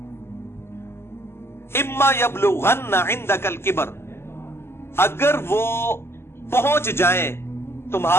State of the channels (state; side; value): late; right; 0.12 ms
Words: इम्मा यबलुगन्ना इंदकल किबर, अगर वो पहुंच जाए